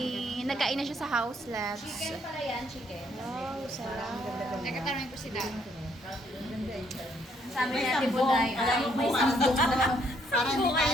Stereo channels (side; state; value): both; normal; correlation 0.69